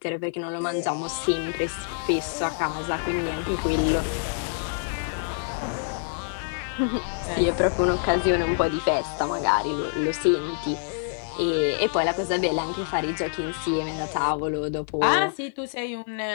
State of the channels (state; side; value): silent; right; digital silence